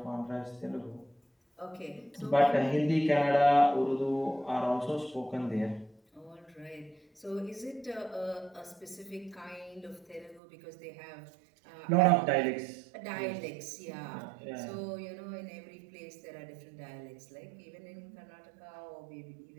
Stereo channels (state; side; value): drops out; left; at 10.4 s